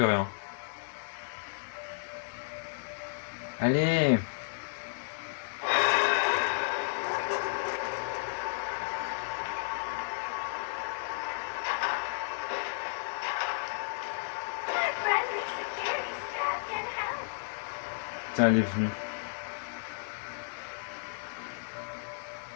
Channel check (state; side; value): silent; right; digital silence